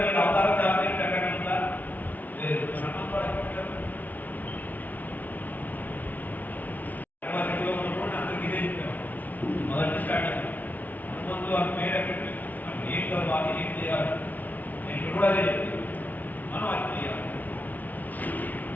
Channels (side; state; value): right; late; 0.078 ms